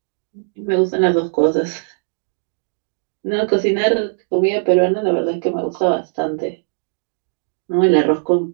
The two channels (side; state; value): left; silent; digital silence